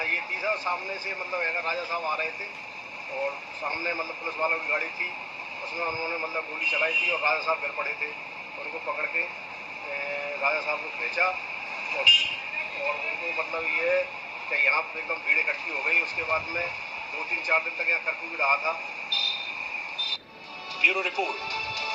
ये तीसरा सामने से राजा साहब आ रहे थे और सामने पुलिस वालों की गाड़ी थी, उसमें उन्होंने गोली चलाई थी और राजा साहब गिर पड़े थे। उनको पकड़ के राजा साहब को भेजा और उनको ये कि यहाँ पर एकदम भीड़ इकट्ठी हो गई। उसके बाद में 2-3-4 दिन तक यहाँ कर्फ्यू भी रहा था। ब्यूरो रिपोर्ट,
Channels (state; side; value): identical; both; correlation 1.00